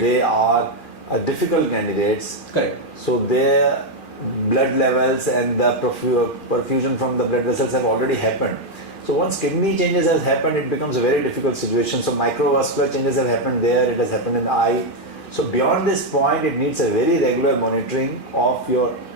they are difficult candidates. Correct. So their blood levels and the perfusion from the blood vessels have already happened. So once kidney changes has happened, it becomes a very difficult situation. So microvascular changes have happened there, it has happened in the eye. So beyond this point, it needs a very regular monitoring of your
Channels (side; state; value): right; late; 2.4 ms